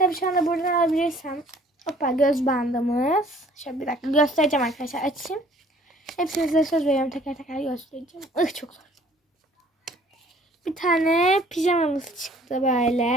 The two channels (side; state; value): both; normal; correlation 0.56